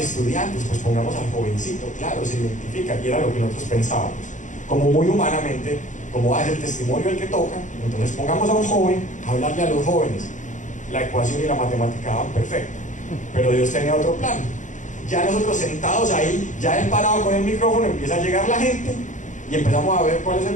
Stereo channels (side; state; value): right; late; 0.36 ms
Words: pues pongamos al jovencito, claro, se identifica, y era lo que nosotros pensábamos, como muy humanamente, como es el testimonio el que toca, entonces pongamos a un joven a hablarle a los jóvenes. La ecuación y la matemática daban perfecto, pero Dios tenía otro plan. Ya nosotros sentados ahí, ya él parado con el micrófono, empieza a llegar la gente y empezamos a ver cuál es el